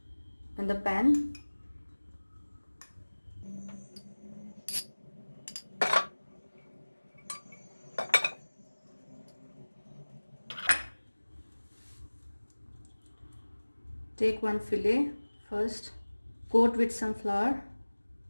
in the pan. Take one fillet first, coat with some flour,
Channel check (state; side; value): inverted; both; correlation -1.00